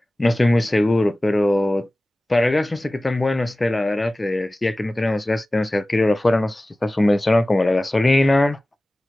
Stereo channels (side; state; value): both; normal; correlation 0.97